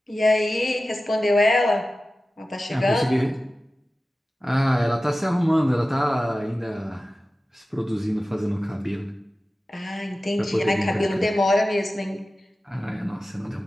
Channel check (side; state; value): both; normal; correlation 0.95